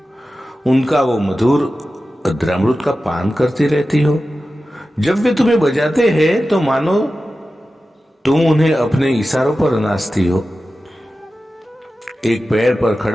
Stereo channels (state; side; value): normal; both; correlation 0.94